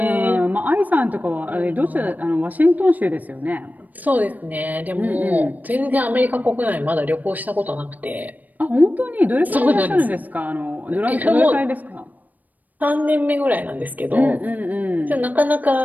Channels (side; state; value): left; late; 0.082 ms